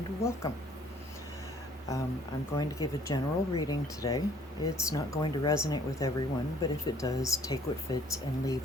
welcome. I'm going to give a general reading today. It's not going to resonate with everyone, but if it does, take what fits and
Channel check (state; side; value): normal; both; correlation 0.58